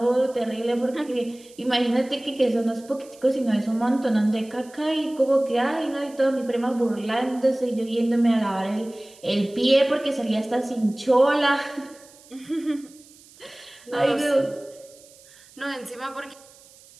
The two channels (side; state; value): right; noise; hiss, 25 dB below the sound